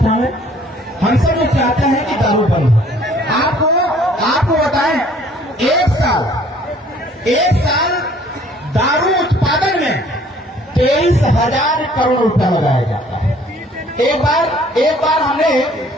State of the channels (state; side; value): normal; both; correlation 0.57